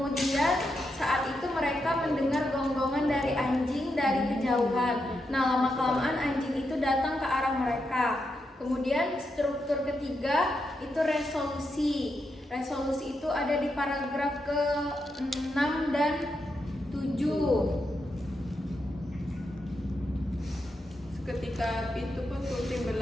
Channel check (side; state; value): both; normal; correlation 0.84